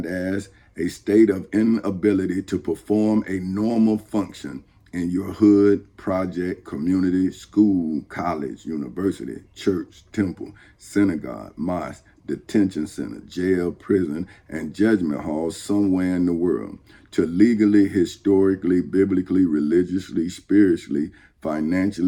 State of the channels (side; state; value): both; identical; correlation 1.00